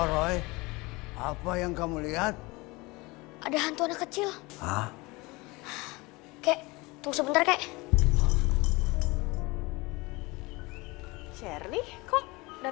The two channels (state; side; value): quieter; right; 23.9 dB